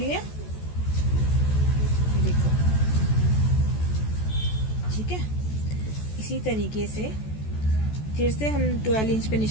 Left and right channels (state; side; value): late; right; 14 ms